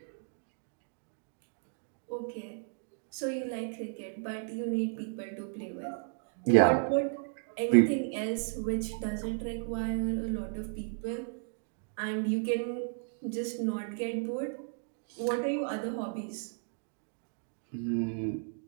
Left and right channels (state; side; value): silent; left; 55 dB below the other